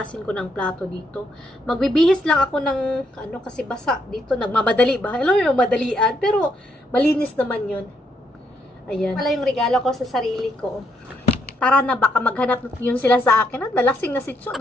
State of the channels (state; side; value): normal; both; correlation 0.75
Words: ko ng plato dito. Magbibihis lang ako ng, kasi basa dito. Nagmamadali ba? Alam mo yung madalian. Pero, malinis naman yun. Ayan. Wala yung regalo ko sa sarili ko. Tara na, baka maghanap yun sila sa akin. Dalasing na si Cho.